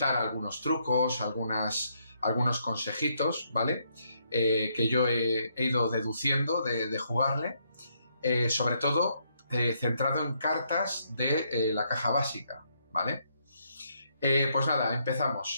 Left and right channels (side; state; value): both; inverted; correlation -0.74